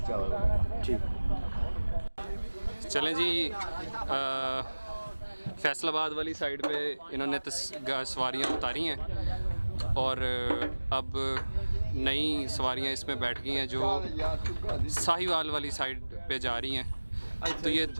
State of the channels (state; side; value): inverted; both; correlation -1.00